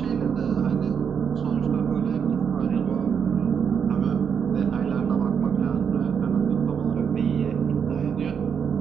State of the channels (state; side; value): quieter; left; 7.1 dB